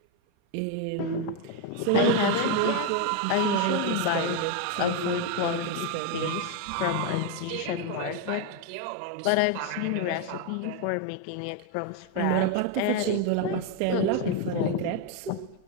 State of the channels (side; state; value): both; different; correlation 0.02